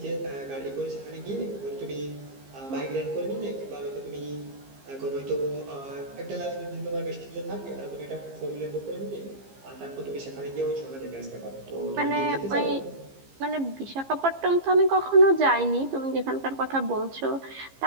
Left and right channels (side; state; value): left; late; 15 ms